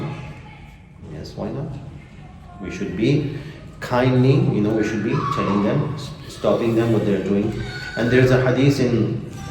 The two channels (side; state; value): both; identical; correlation 1.00